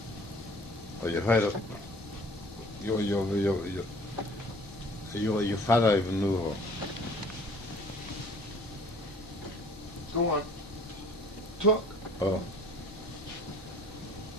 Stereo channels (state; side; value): normal; both; correlation 0.51